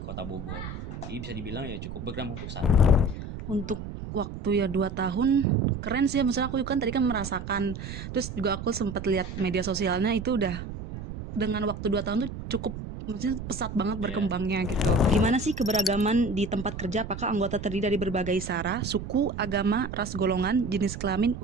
Bogor. Jadi bisa dibilang ya cukup berkembang untuk saat ini. Untuk waktu ya 2 tahun keren sih. Maksudnya aku kan tadi kan merasakan, terus juga aku sempat lihat media sosialnya itu udah dengan waktu 2 tahun tuh cukup, maksudnya pesat banget berkembangnya gitu. Gimana sih keberagaman di tempat kerja? Apakah anggota terdiri dari berbagai sara, suku, agama, ras, golongan, jenis kelamin,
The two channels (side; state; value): right; noise; rumble, 8 dB below the sound